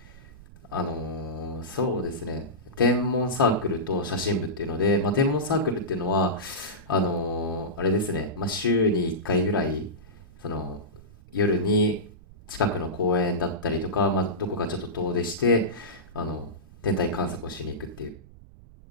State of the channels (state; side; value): noise; right; rumble, 21 dB below the sound